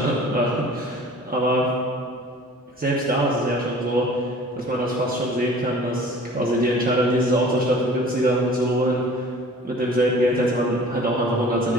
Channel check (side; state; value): both; normal; correlation 0.47